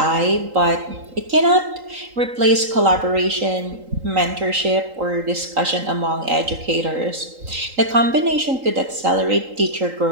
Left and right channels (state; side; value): late; left; 3.8 ms